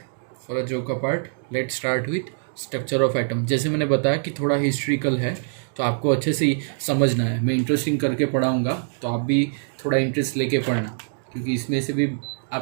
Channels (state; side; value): silent; left; digital silence